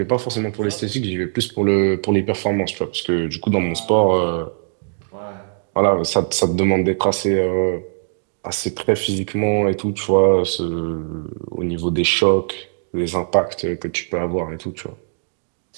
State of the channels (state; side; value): silent; left; digital silence